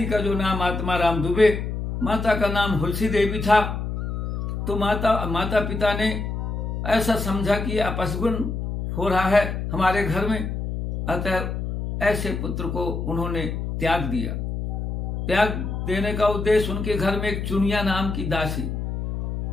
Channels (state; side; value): noise; left; hum, 4 dB below the sound